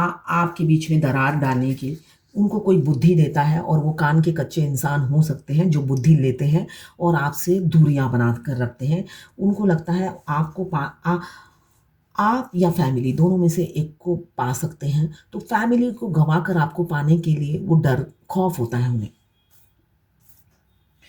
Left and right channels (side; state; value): both; identical; correlation 1.00